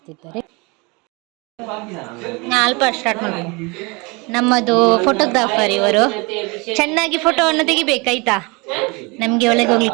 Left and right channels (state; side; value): quieter; left; 27.8 dB